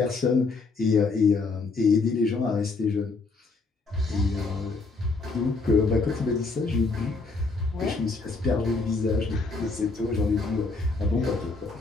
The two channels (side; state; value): right; quieter; 3.9 dB